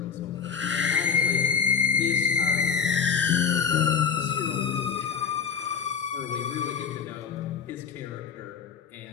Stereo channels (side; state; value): right; quieter; 6.9 dB